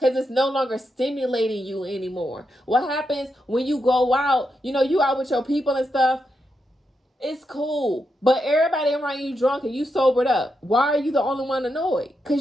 it's no longer stimulating you anymore. What happens when you go out, you out with your people and stuff, it's cool. But everybody around you drunk and you sobered up. Why are you the only one annoyed?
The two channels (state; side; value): normal; both; correlation 0.84